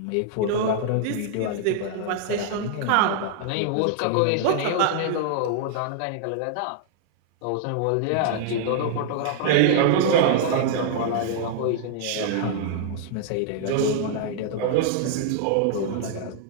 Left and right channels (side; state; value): both; different; correlation -0.01